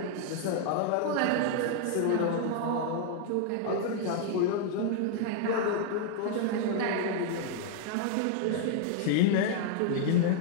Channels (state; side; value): different; both; correlation 0.00